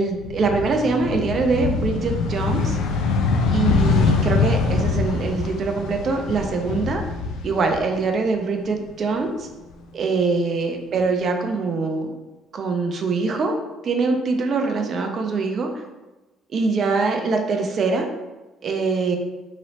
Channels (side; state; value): both; normal; correlation 0.60